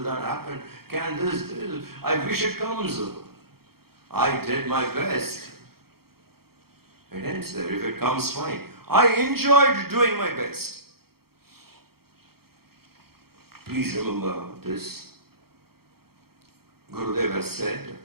that happen? Can this? I wish it comes. I did my best. It ends there. If it comes, fine. I enjoyed doing my best. Please remember this. Gurudev has said,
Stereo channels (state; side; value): late; left; 0.95 ms